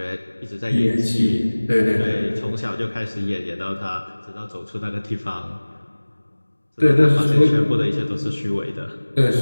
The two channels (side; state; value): both; inverted; correlation -1.00